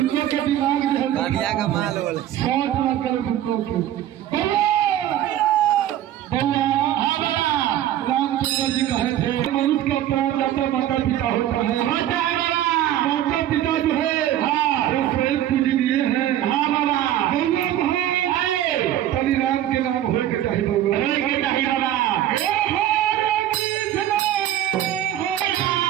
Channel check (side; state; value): left; quieter; 12.1 dB